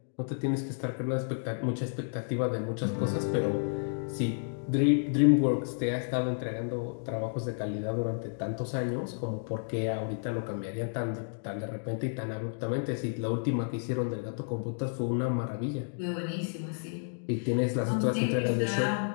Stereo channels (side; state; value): right; silent; digital silence